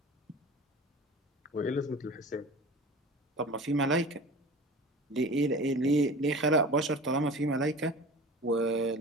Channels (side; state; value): both; normal; correlation 0.37